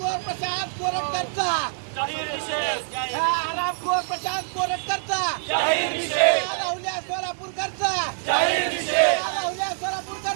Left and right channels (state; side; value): silent; left; 60 dB below the other